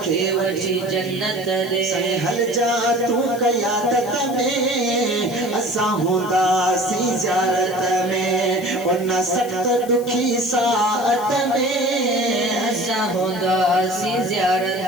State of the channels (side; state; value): left; noise; hiss, 18 dB below the sound